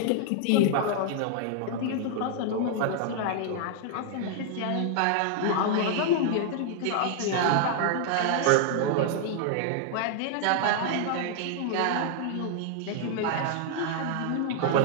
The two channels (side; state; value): both; different; correlation 0.00